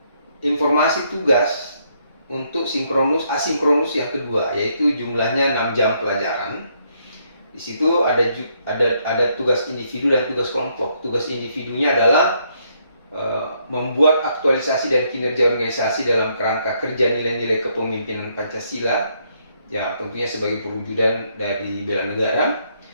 informasi tugas untuk asinkronus yang kedua, yaitu jumlahnya 6 jam pelajaran. Di situ ada tugas individu dan tugas kelompok. Tugas individunya adalah membuat aktualisasi dan kinerja organisasi dalam kerangka kerja nilai-nilai kepemimpinan Pancasila, ya tentunya sebagai perwujudan dari bela negara.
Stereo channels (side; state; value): both; inverted; correlation -0.73